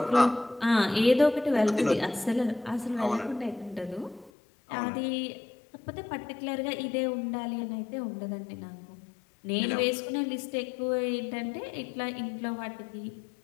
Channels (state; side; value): drops out; right; at 4.3 s